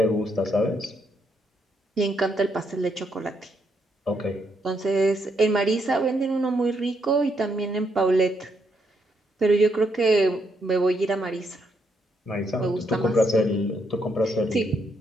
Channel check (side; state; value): both; normal; correlation 0.76